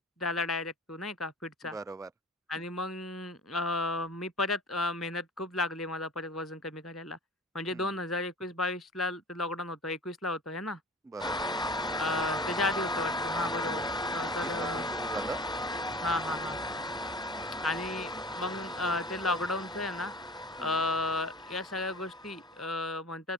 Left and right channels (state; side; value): normal; both; correlation 0.40